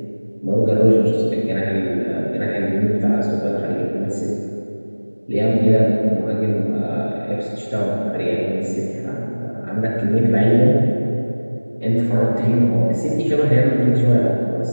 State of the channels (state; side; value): inverted; both; correlation -1.00